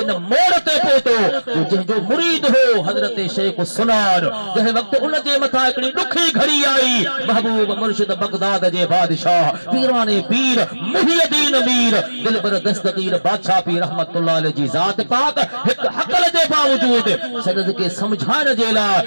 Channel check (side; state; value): both; inverted; correlation -1.00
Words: इन मोड़ ते पहुतो जंहिंजो मुरीद हो हजरत शेख सुनार जंहिं वक्त उन जे मथा हिकिड़ी ॾुखी घड़ी आई महबूब मुर्शिद बगदाद जे बादशाह पीराने पीर मुहियद्दीन मीर दिलबर दस्तगीर बादशाह पीर रहमतुल्लाह अलैहि जी ज़ात पाक एक हक़ल जे बावजूद सदद के समझाइण जे लाइ